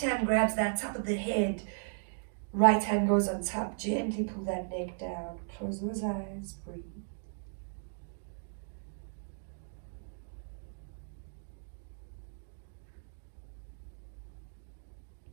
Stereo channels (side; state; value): left; silent; digital silence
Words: hand grabs that top of the head. Right hand goes on top. Gently pull that neck down. Close those eyes. Breathe.